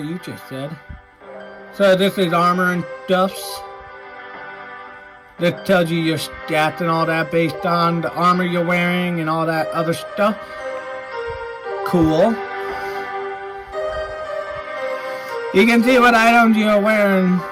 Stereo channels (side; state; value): both; identical; correlation 1.00